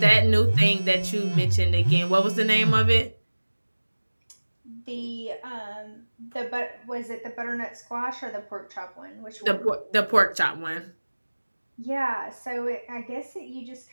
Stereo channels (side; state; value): both; inverted; correlation -1.00